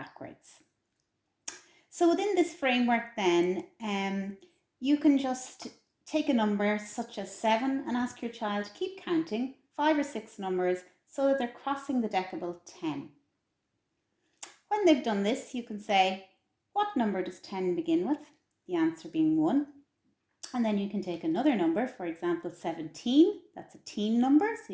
So within this framework then, you can just take a number such as 7 and ask your child to keep counting 5 or 6 numbers so that they're crossing the decibel 10. When they've done this, you can say, what number does 10 begin with? The answer being 1. And then you can take another number, for example, 17. That's a teen number, so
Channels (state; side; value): identical; both; correlation 1.00